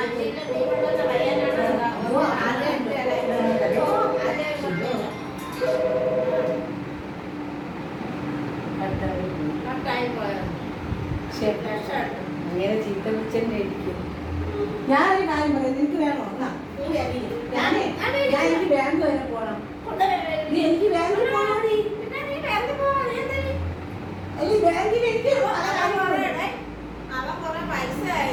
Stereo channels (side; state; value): both; identical; correlation 1.00